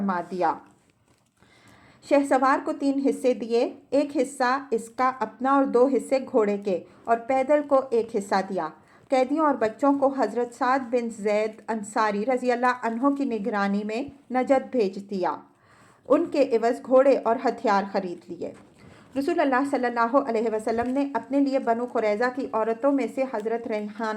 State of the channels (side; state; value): both; identical; correlation 1.00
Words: دیا۔ شہسوار کو 3 حصے دیے، ایک حصہ اس کا اپنا اور 2 حصے گھوڑے کے، اور پیدل کو 1 حصہ دیا۔ قیدیوں اور بچوں کو حضرت سعد بن زید انصاری رضی اللہ عنہ کی نگرانی میں نجد بھیج دیا، ان کے عوض گھوڑے اور ہتھیار خرید لیے۔ رسول اللہ صلی اللہ علیہ وسلم نے اپنے لیے بنو قریظہ کی عورتوں میں سے حضرت